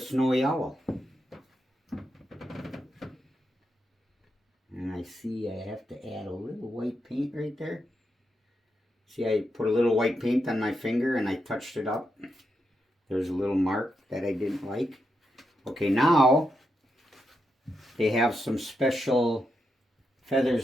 owl. And I see I have to add a little white paint right there. See, I put a little white paint on my finger and I touched it up. There's a little mark that I didn't like. Okay, now they have some special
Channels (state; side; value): normal; both; correlation 0.84